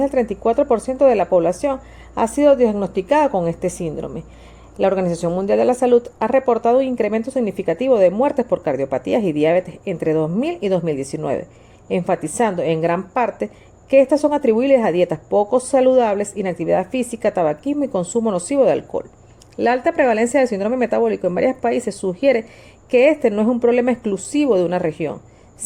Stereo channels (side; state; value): both; identical; correlation 1.00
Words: 34% de la población ha sido diagnosticada con este síndrome. La Organización Mundial de la Salud ha reportado un incremento significativo de muertes por cardiopatías y diabetes entre 2000 y 2019, enfatizando en gran parte que estas son atribuibles a dietas poco saludables, inactividad física, tabaquismo y consumo nocivo de alcohol. La alta prevalencia del síndrome metabólico en varios países sugiere que este no es un problema exclusivo de una región,